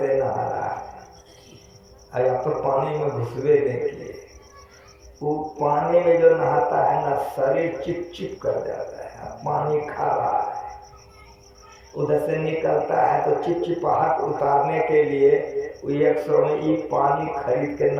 नहा रहा है। अरे आप तो पानी में घुसवे देखिए, वो पानी में जो नहाता है ना, शरीर चिप चिप कर जाता है। पानी खा रहा है, उधर से निकलता है तो चिपचिपाहट उतारने के लिए 100 में ये पानी खरीद के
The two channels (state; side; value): identical; both; correlation 1.00